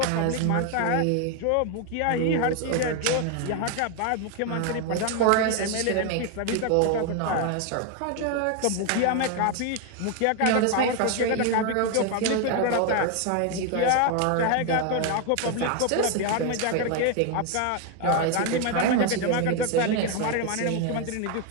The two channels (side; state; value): both; different; correlation 0.01